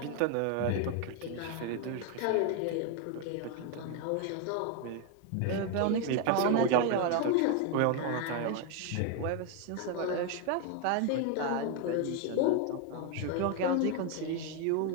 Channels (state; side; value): different; both; correlation 0.01